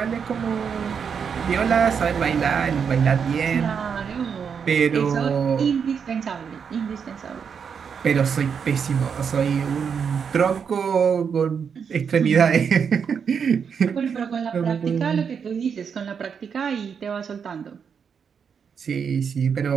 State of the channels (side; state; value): left; quieter; 6.7 dB